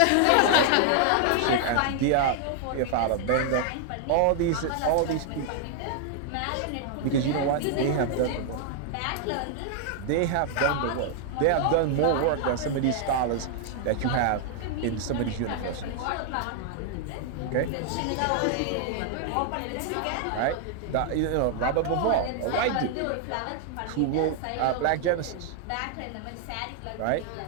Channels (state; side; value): different; both; correlation 0.00